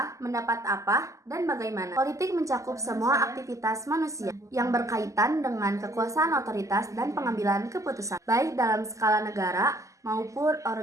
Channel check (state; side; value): late; left; 0.16 ms